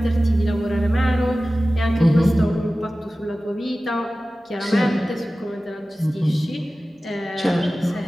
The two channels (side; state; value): both; normal; correlation 0.96